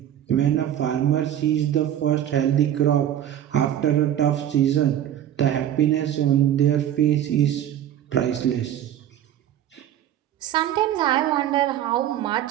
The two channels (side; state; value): left; quieter; 11.0 dB